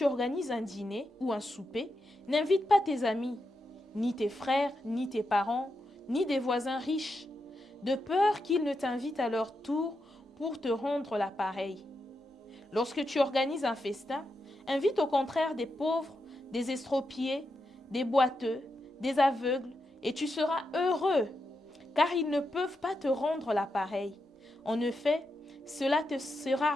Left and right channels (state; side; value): normal; both; correlation 0.86